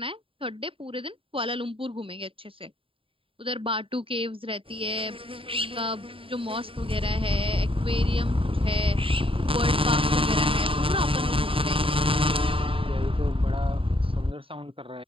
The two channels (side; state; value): left; late; 0.26 ms